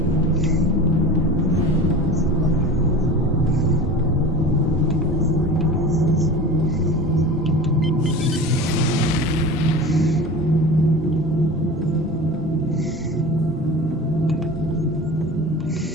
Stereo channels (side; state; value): both; normal; correlation 0.35